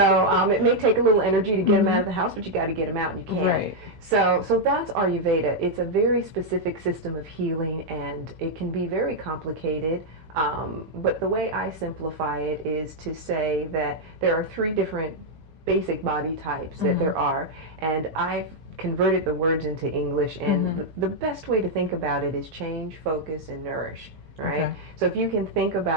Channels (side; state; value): left; late; 16 ms